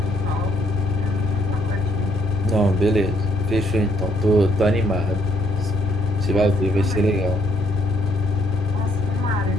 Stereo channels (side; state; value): both; normal; correlation 0.69